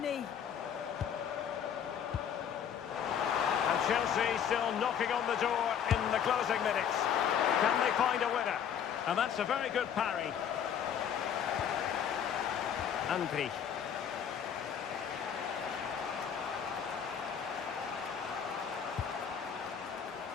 he? And Chelsea still knocking on the door in the closing minutes. Can they find a winner? And that's a very good parry. Andri.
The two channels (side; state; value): right; quieter; 8.3 dB